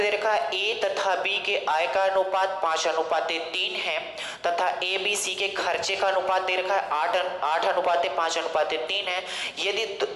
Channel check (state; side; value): identical; both; correlation 1.00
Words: दे रखा है ए तथा बी के आय का अनुपात 5:3 है, तथा ए बी सी के खर्चे का अनुपात दे रखा है 8:5:3 है। यदि